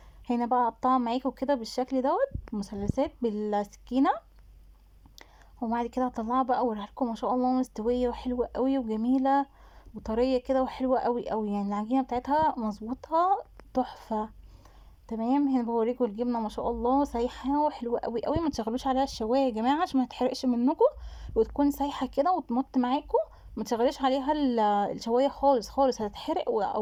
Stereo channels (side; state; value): both; identical; correlation 1.00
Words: هنا بقى اقطعها معاكم كده بالشكل دوت مثلثات بالسكينه، وبعد كده هطلعها بقى اوريها لكم. ما شاء الله مستويه وحلوه قوي وجميله وطريه كده وحلوه قوي قوي، يعني العجينه بتاعتها مظبوطه تحفه. تمام، هنا بوريكم الجبنه ما شاء الله سايحه وحلوه قوي قوي. ما تشغلوش عليها الشوايه يا جماعه عشان ما تحرقش منكم، وتكون سايحه كده وتمط معاكم. ما تشغليش عليها الشوايه خالص خالص، هتتحرق